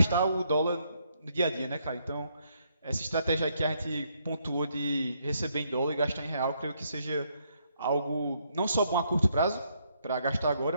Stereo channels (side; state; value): both; inverted; correlation -0.73